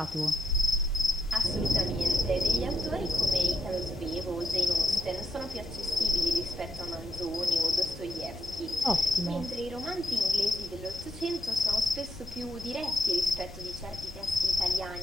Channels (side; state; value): both; normal; correlation 0.78